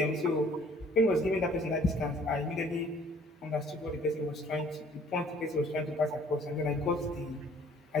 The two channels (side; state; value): both; normal; correlation 0.56